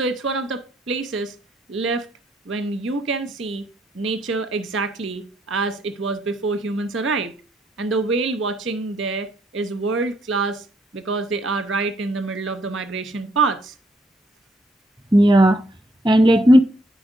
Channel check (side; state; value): both; normal; correlation 0.71